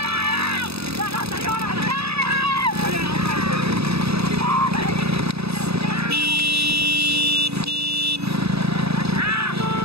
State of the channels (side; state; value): left; late; 0.78 ms